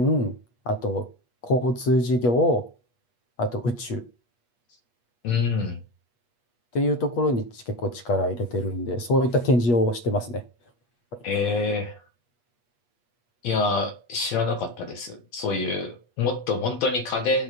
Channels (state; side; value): late; right; 8.3 ms